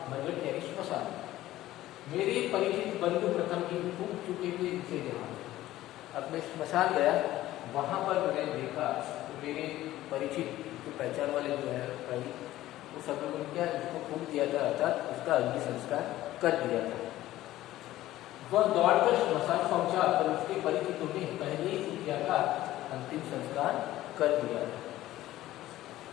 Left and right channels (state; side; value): quieter; right; 15.1 dB